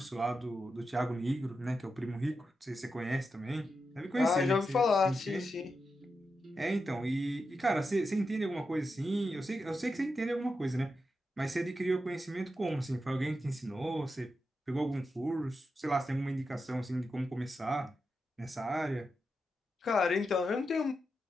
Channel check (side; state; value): both; normal; correlation 0.88